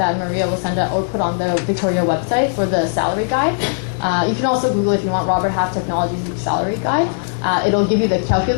Maria will send out or put on the Victoria website for the salary guide, you can also Google if you want Robert Half Technologies salary guide. It'll give you the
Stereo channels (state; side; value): silent; right; digital silence